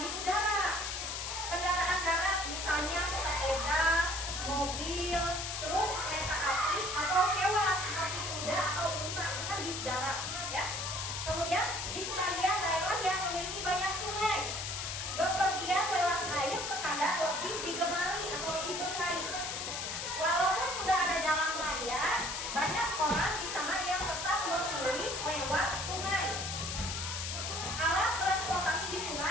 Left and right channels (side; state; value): left; noise; hiss, 4 dB below the sound